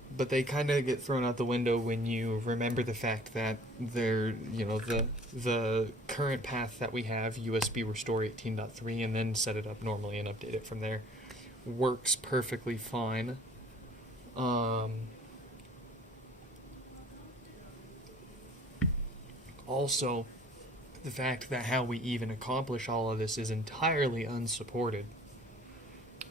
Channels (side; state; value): both; normal; correlation 0.52